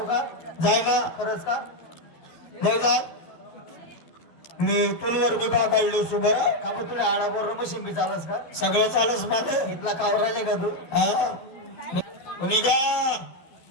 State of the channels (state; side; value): late; right; 12 ms